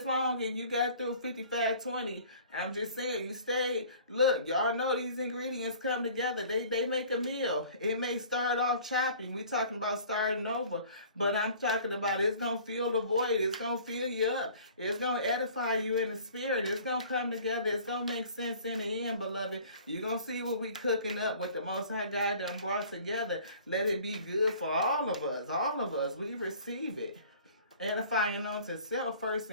long and you got through 55-20, I'm just saying, you stayed. Look, y'all know these ingredients come together. They make a meal. It may start off choppy. We talking about starting over. But I'm talking about it's going to fill the void. It's going to fill you up. It's going to edify you in the spirit. It's going to come together. It's going to make sense in the end, beloved. You're going to see what we cooking up, what the Most High God done brought together. Let it be good for all of us. All of us. We receive it. Edifying unto self first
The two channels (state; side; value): inverted; both; correlation -0.49